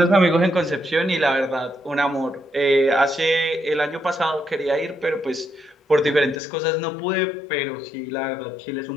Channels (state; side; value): drops out; right; at 6.4 s